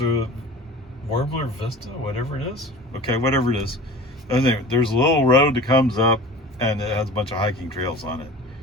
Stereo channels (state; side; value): normal; both; correlation 0.38